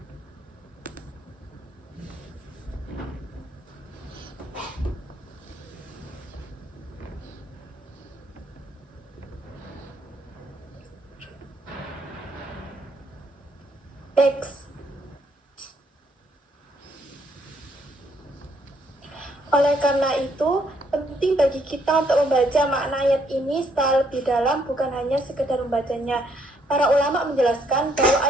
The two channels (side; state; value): both; normal; correlation 0.70